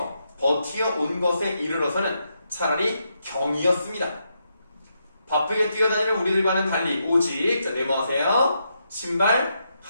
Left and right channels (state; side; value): inverted; both; correlation -0.81